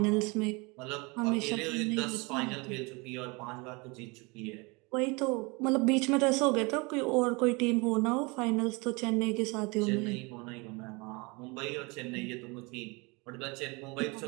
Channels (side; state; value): left; quieter; 27.7 dB